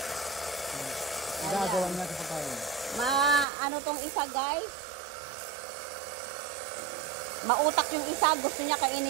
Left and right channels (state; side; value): drops out; left; at 3.5 s